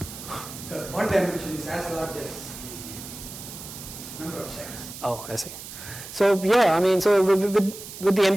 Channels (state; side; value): noise; right; hiss, 12 dB below the sound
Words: because one dimension is as large as the number of sets. Oh, I see. So yeah, I mean, so with the